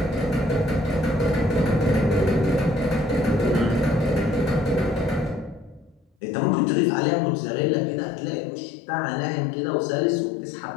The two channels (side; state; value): right; drops out; at 6.1 s